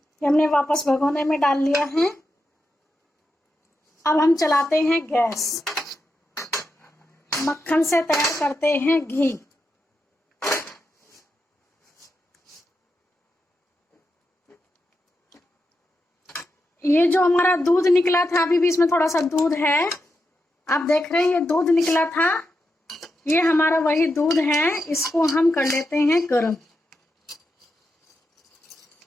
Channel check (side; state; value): both; normal; correlation 0.86